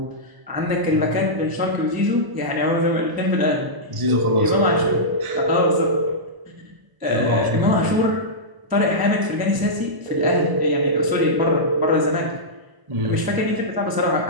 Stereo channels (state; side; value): late; left; 1.0 ms